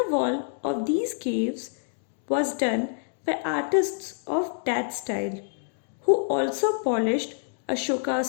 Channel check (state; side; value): silent; right; digital silence